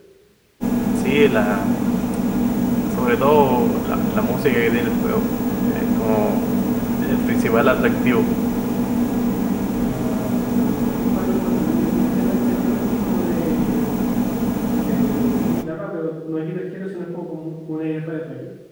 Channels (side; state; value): both; identical; correlation 1.00